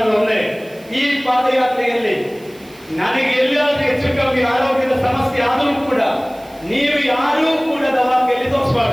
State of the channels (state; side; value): noise; right; hiss, 25 dB below the sound